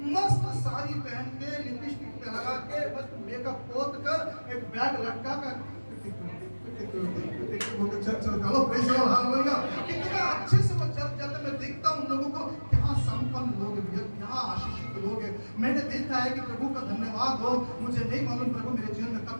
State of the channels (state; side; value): inverted; both; correlation -1.00